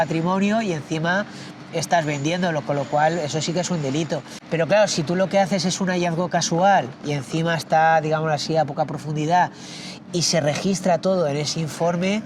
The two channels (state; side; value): identical; both; correlation 1.00